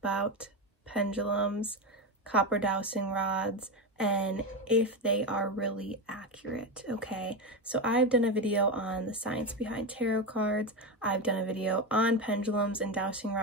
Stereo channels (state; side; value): normal; both; correlation 0.14